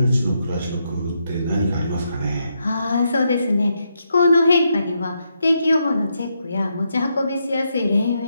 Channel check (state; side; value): inverted; both; correlation -0.80